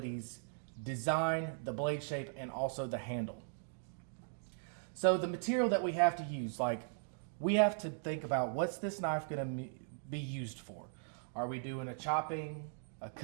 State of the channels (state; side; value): silent; left; digital silence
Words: design, the blade shape, and also the handle. So the material that we have to use, like we have to think about what's this knife going to be used for. Are we doing a chopping, a